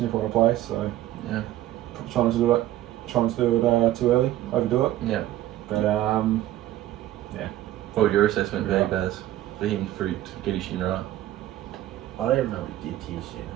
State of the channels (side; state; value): left; quieter; 14.1 dB